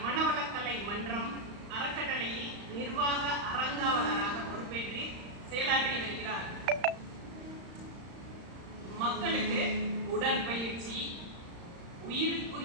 மனவளக்கலை மன்றம் அறக்கட்டளையில் நிர்வாக அறங்காவலராக பொறுப்பேற்று செயலாற்றி வருகிறார். மக்களுக்கு உடற்பயிற்சி,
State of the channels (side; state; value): left; late; 35 ms